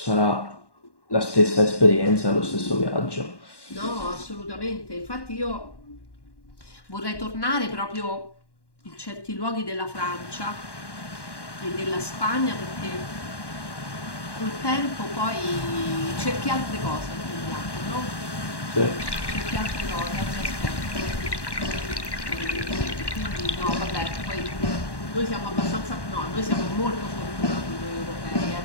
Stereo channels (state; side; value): late; right; 1.1 ms